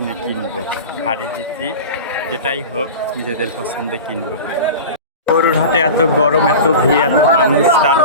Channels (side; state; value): both; inverted; correlation -0.31